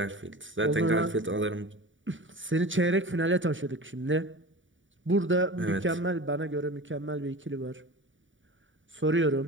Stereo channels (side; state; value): left; late; 0.56 ms